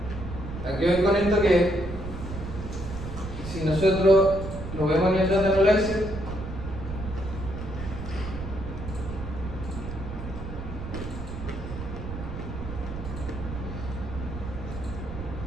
Aquí voy con esto que si nosotros lo vemos en el Data Analyzer,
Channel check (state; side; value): noise; right; rumble, 8 dB below the sound